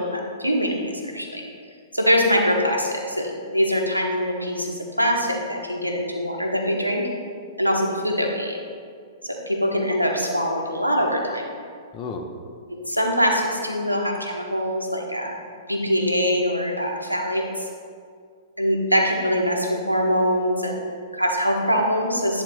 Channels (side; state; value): both; inverted; correlation -0.69